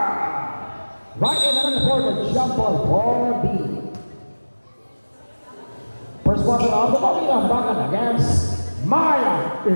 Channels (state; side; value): inverted; both; correlation -1.00